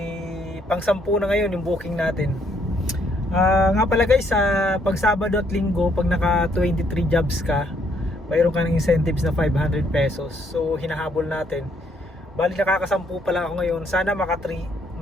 pang 10 na ngayon yung booking natin. Nga pala guys, pag Sabado at Linggo, pag naka 23 jobs ka, mayroon ka ng incentives na 500 pesos. So hinahabol natin. Bali, nakakasampu pa lang ako ngayon. Sana maka 13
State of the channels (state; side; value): normal; both; correlation 0.69